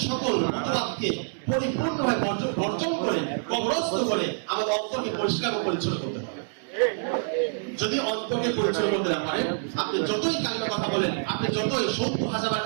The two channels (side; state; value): left; silent; digital silence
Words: সকল মতবাদকে পরিপূর্ণভাবে বর্জন করে, কবরস্থ করে আমাদের অন্তরকে পরিষ্কার ও পরিচ্ছন্ন করতে হবে। যদি অন্তরকে পরিচ্ছন্ন করতে না পারেন, আপনি যতই কালিমা কথা বলেন, আপনি যতই 70,000